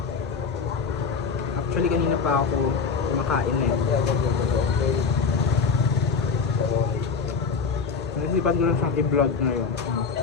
actually kanina pa ako kumakain eh. Naisipan ko lang siyang i-vlog ngayon.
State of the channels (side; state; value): right; quieter; 5.3 dB